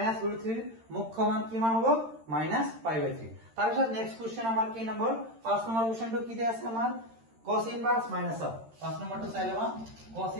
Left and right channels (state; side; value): late; left; 13 ms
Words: √3 মুখ্য মান কি মান হবে মাইনাস π/3 তারপর নেক্সট কোশ্চেন আমার কি নম্বর 5 নম্বর কোশ্চেনটো কি দেয়া আছে আমার cos ইনভার্স মাইনাস হাফ 5 নম্বরটা চাইলেবা cos